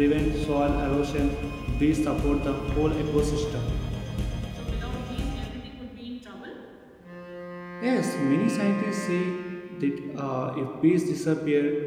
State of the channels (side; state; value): both; identical; correlation 1.00